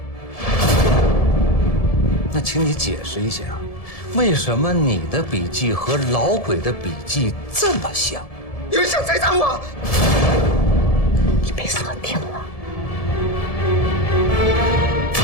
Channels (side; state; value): right; late; 1.7 ms